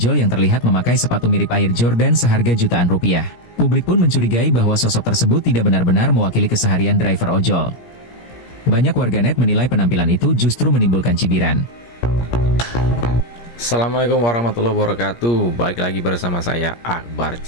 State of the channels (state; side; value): late; right; 17 ms